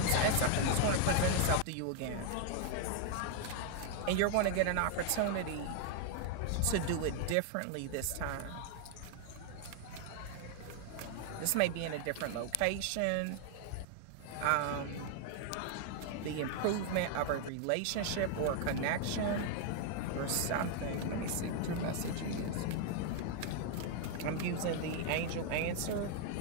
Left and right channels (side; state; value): both; different; correlation 0.00